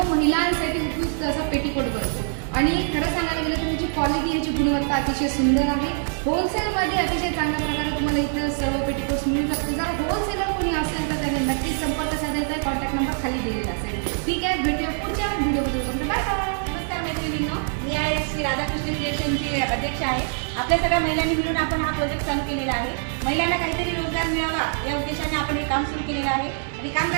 महिलांसाठी उपयुक्त असा पेटीकोट बनतो आणि खरं सांगायला गेलं तर याची क्वालिटी, याची गुणवत्ता अतिशय सुंदर आहे. होलसेलमध्ये अतिशय चांगल्या प्रकारे तुम्हाला इथं सर्व पेटीकोट्स मिळू शकते. जर होलसेलर कोणी असेल तर त्याने नक्कीच संपर्क साधायचा. कॉन्टॅक्ट नंबर खाली दिलेला असेल. ठीक आहे, भेटूया पुढच्या व्हिडिओमध्ये. Bye bye. नमस्कार मैत्रिणींनो, मी आहे श्री राधाकृष्ण क्रिएशनची अध्यक्ष आहे. आपल्या सगळ्या महिलांनी मिळून आपण हा प्रोजेक्ट चालू केलेला आहे. महिलांना काहीतरी रोजगार मिळावा या उद्देशाने आपण हे काम सुरू केलेलं आहे. आणि काम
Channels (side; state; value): left; silent; 61 dB below the other